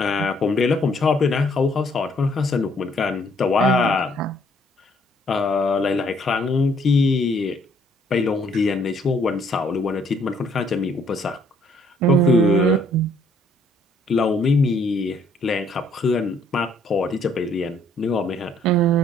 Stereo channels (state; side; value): normal; both; correlation 0.65